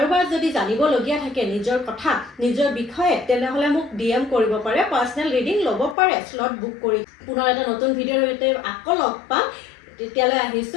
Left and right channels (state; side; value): drops out; right; at 6.0 s